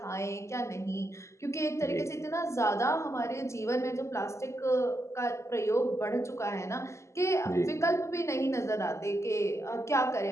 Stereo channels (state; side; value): late; right; 0.13 ms